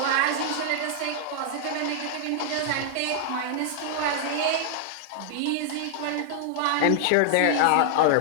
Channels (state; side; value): different; both; correlation 0.00